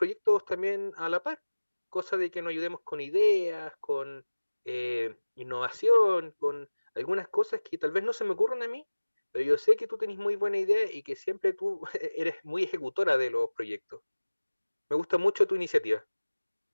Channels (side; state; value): both; inverted; correlation -1.00